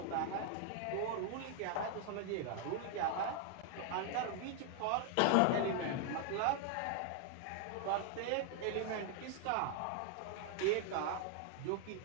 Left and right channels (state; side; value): different; both; correlation 0.00